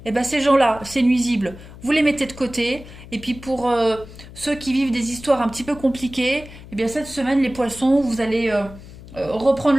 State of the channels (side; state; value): left; noise; hum, 17 dB below the sound